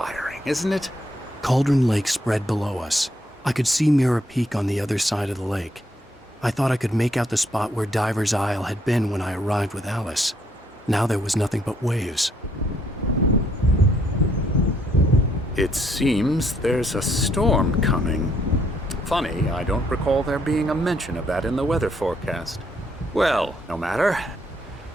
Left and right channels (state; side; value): normal; both; correlation 0.71